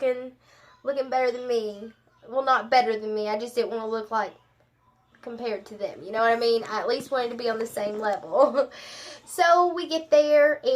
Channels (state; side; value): identical; both; correlation 1.00